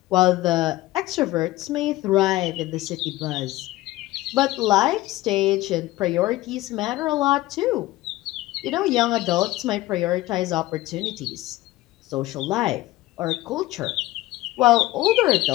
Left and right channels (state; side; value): quieter; right; 17.4 dB